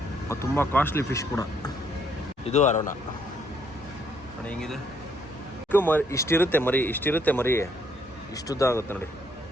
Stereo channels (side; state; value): both; normal; correlation 0.69